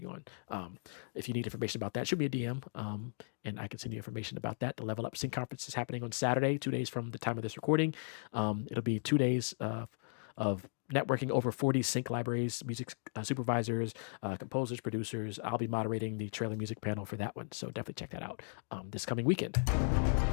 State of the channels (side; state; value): right; silent; digital silence